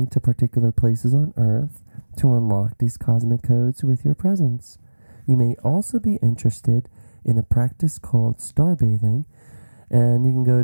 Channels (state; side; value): inverted; both; correlation -1.00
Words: to particular places on Earth to unlock these cosmic codes with your presence. You may also be interested in a practice called starbathing, and you can go